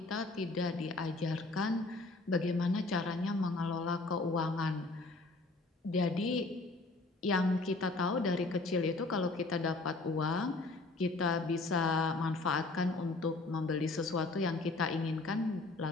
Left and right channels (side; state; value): right; quieter; 3.3 dB